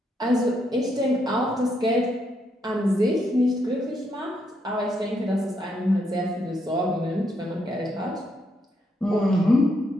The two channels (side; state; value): both; normal; correlation 0.77